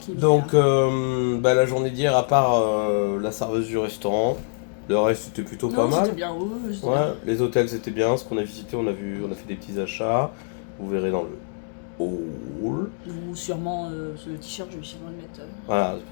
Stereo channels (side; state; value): right; silent; 62 dB below the other